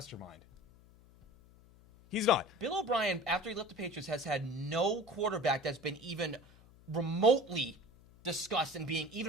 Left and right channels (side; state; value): left; noise; hum, 25 dB below the sound